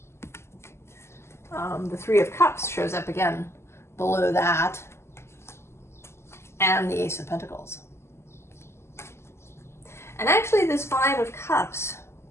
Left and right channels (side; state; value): right; late; 0.13 ms